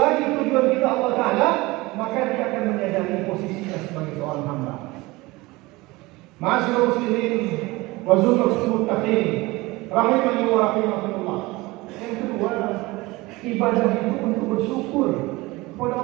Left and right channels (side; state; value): left; quieter; 21.7 dB